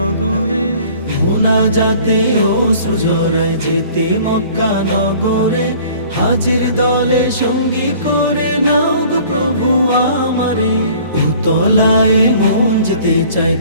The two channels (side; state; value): both; inverted; correlation -0.51